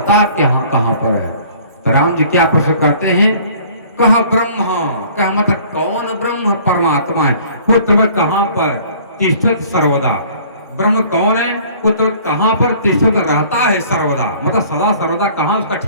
कहाँ कहाँ पर है। तो राम जी क्या प्रश्न करते हैं, कह ब्रह्म, कह मतलब कौन ब्रह्म परमात्मा है, पुत्र कहाँ पर तिष्ठत सर्वदा, ब्रह्म कौन है, पुत्र कहाँ पर तिष्ठत रहता है सर्वदा, मतलब सदा सर्वदा कहाँ उसका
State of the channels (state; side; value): inverted; both; correlation -0.52